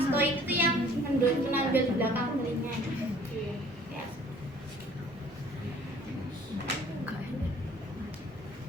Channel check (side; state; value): both; normal; correlation 0.53